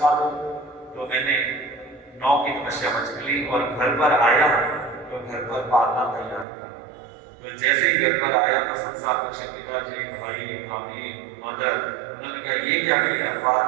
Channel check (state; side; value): drops out; left; at 6.5 s